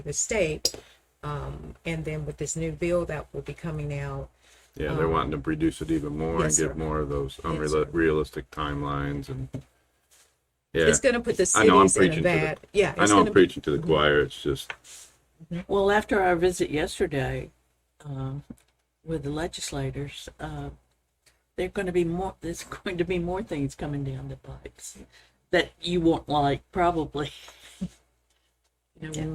the state. And then with this new bill that will be coming out, Yeah, they're wanting to reduce it even more yes, and give sir. more of those Yes, sir. unrealistic timelines. And yeah, it's going to put the I know I'm cities in a preaching to the- bad. Yeah, I it's know I'm gonna preaching to the choir. It's just, Well, after our visit yesterday with the legislators, there's going to be more things coming down the pipes that you won't like, probably.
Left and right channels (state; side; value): identical; both; correlation 1.00